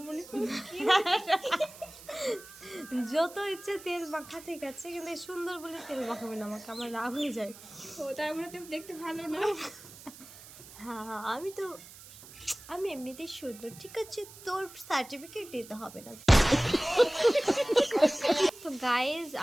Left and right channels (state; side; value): noise; right; hiss, 18 dB below the sound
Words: যত ইচ্ছে তেল মাখা ঠিক আছে, কিন্তু এই সুন্দর বলে তেল মাখাবে না আমাকে, আমার রাগ হয়ে যায়। ও তার মানে তুমি দেখতে ভালো না হ্যাঁ আমি এমনিতেই সুন্দর, ঠিক আছে, তোর সার্টিফিকেট দিতে হবে না। তো গাইজ